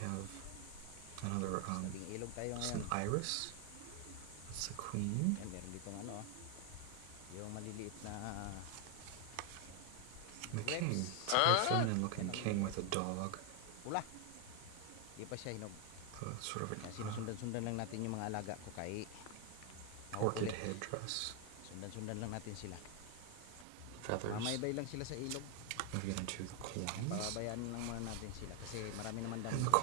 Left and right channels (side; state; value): both; different; correlation 0.00